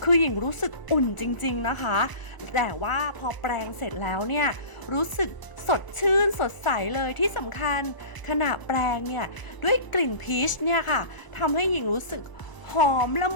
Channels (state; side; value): late; right; 1.0 ms